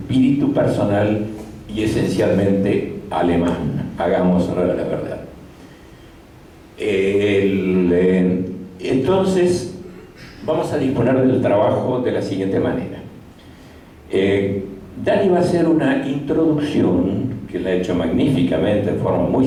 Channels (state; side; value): identical; both; correlation 1.00